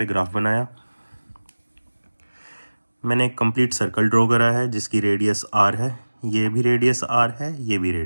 ग्राफ बनाया। मैंने एक कंप्लीट सर्कल ड्रॉ करा है जिसकी रेडियस आर है, ये भी रेडियस आर है, ये भी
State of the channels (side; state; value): both; inverted; correlation -1.00